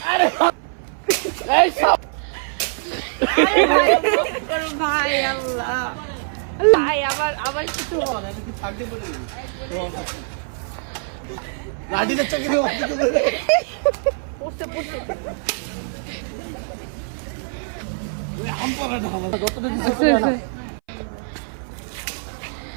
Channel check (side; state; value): left; silent; 59 dB below the other